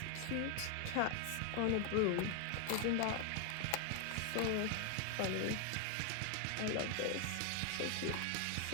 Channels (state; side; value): different; both; correlation 0.00